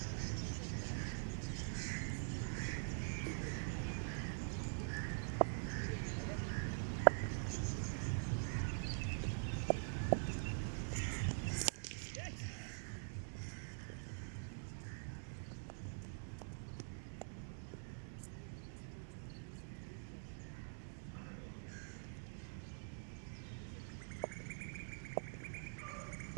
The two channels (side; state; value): left; silent; digital silence